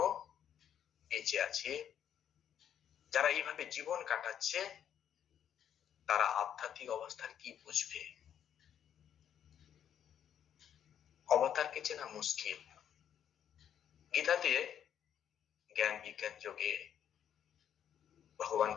বেঁচে আছে, যারা এইভাবে জীবন কাটাচ্ছে, তারা আধ্যাত্মিক অবস্থার কি বুঝবে? অবতারকে চেনা মুশকিল। গীতাতে জ্ঞান বিজ্ঞান যোগে ভগবান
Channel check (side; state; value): right; quieter; 9.4 dB